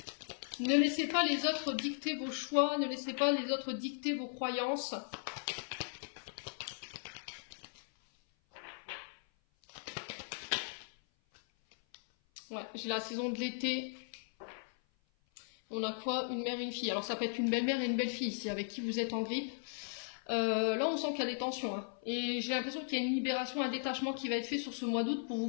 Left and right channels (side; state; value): right; silent; 53 dB below the other